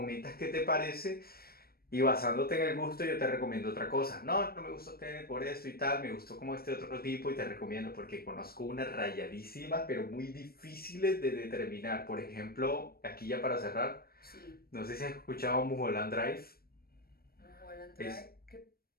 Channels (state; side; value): late; right; 0.44 ms